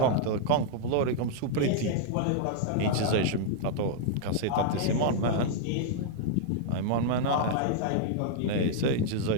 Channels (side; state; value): both; different; correlation -0.01